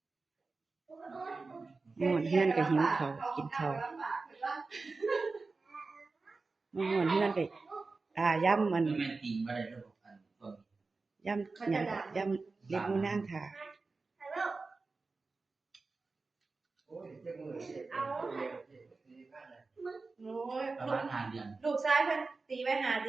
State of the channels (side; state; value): left; quieter; 3.9 dB